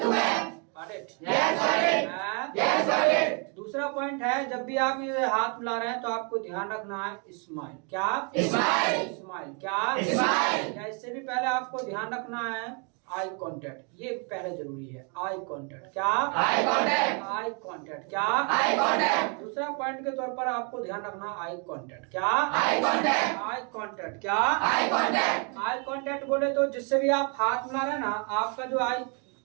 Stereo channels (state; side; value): quieter; left; 36.5 dB